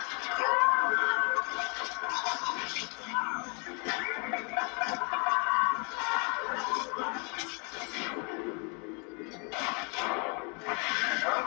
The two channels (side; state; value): right; quieter; 35.0 dB